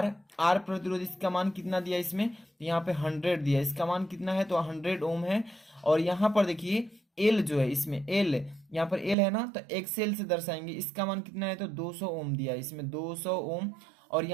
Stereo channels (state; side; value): drops out; left; at 9.2 s